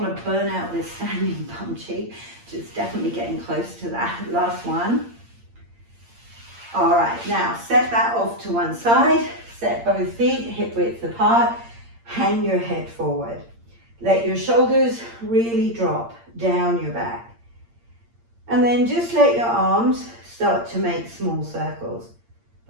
to burn out this standing bum cheek. Just definitely getting close to that. Last one. All right, now set that off to one side. Set both feet hip width apart. Hang your head forward. Let your shoulders really drop down your back. And then just let your arms start to make small circles,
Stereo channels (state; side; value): late; left; 8.7 ms